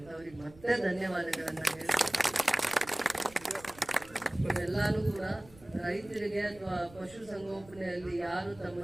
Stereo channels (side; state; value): right; noise; rumble, 22 dB below the sound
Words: ಅವ್ರಿಗೆ ಮತ್ತೆ ಧನ್ಯವಾದಗಳನ್ನ ಹೇಳ್ತೀನಿ. ಎಲ್ಲಾನು ಕೂಡ ರೈತರಿಗೆ ಅಥವಾ ಪಶು ಸಂಗೋಪನೆಯಲ್ಲಿ ಯಾರು ತಮ್ಮ